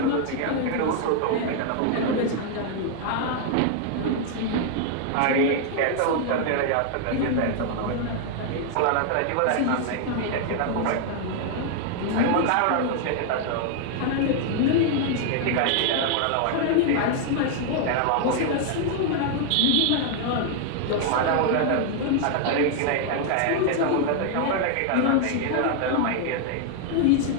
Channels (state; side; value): different; both; correlation 0.00